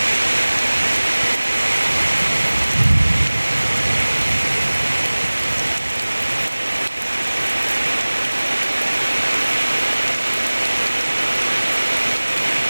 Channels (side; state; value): both; inverted; correlation -1.00